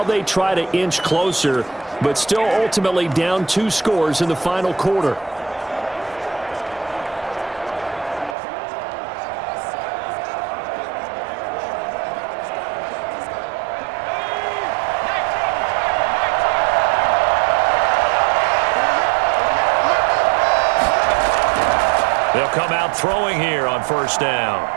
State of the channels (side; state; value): left; drops out; at 8.3 s